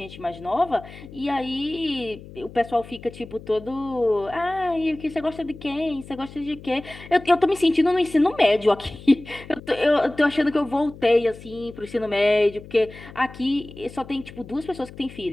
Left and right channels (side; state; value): left; noise; hum, 17 dB below the sound